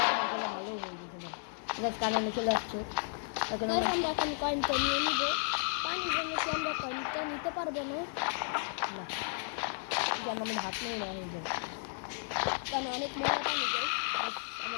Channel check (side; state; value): right; silent; 55 dB below the other